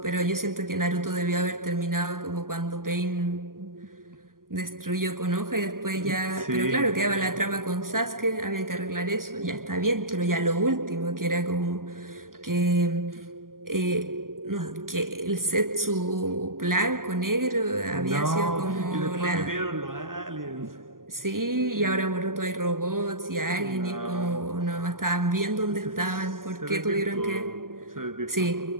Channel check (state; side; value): late; left; 0.91 ms